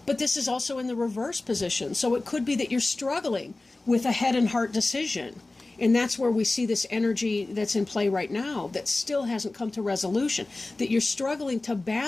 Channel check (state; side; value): quieter; right; 3.1 dB